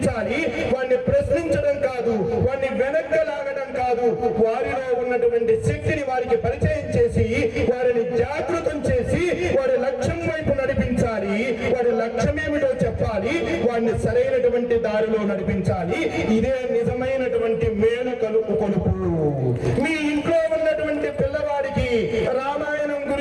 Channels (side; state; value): both; identical; correlation 1.00